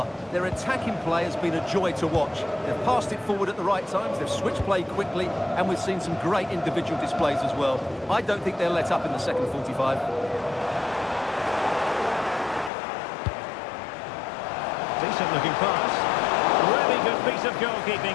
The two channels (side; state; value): right; drops out; at 12.7 s